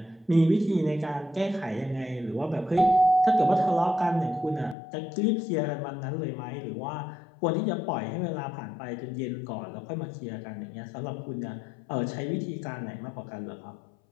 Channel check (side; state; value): right; drops out; at 4.8 s